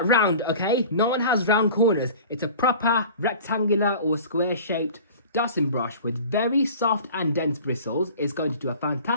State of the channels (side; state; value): both; inverted; correlation -0.41